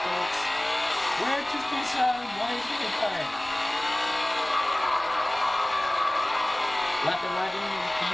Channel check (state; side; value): noise; left; rumble, 25 dB below the sound